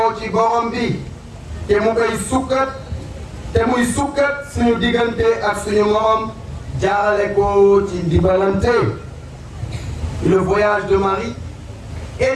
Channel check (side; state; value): both; identical; correlation 1.00